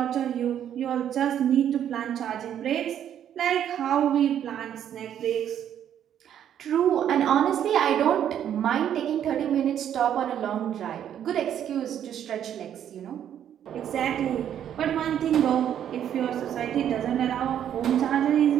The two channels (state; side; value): quieter; left; 9.9 dB